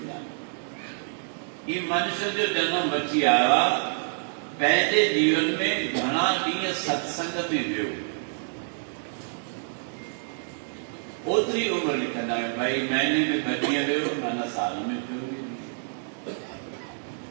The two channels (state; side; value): silent; left; digital silence